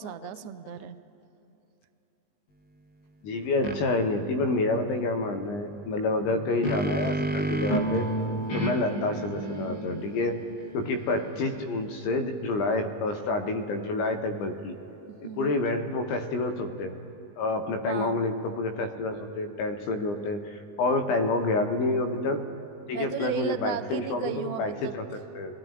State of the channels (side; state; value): right; late; 20 ms